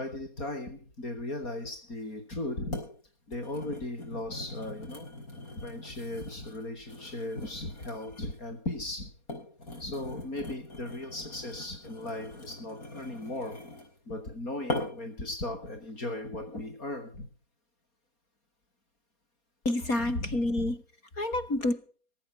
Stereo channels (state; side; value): late; right; 4.3 ms